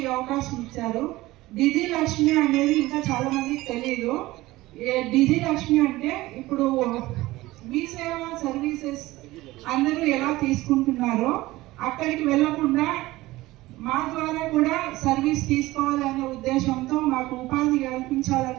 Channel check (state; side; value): quieter; left; 18.4 dB